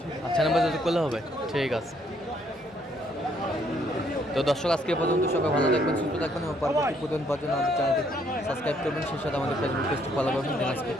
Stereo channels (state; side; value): normal; both; correlation 0.68